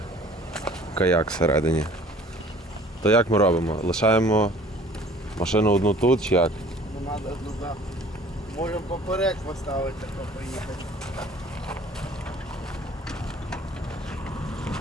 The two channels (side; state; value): both; normal; correlation 0.50